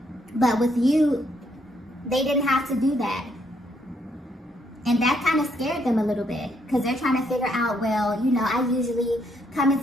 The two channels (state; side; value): normal; both; correlation 0.73